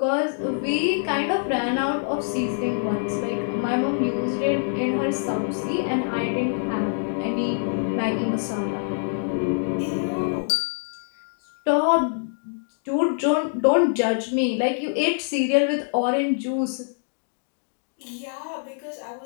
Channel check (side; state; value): right; silent; digital silence